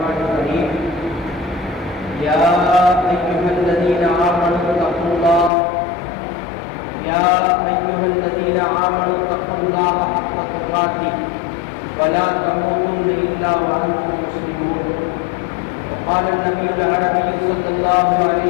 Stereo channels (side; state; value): right; drops out; at 5.5 s